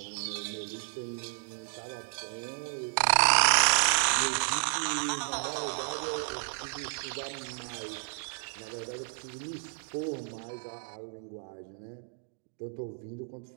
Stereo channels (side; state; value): left; silent; 56 dB below the other